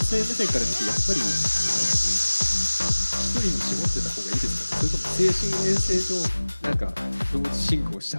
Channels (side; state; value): both; inverted; correlation -1.00